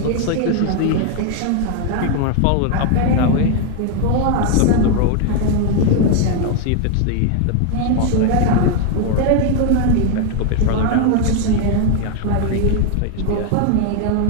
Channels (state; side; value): different; both; correlation 0.00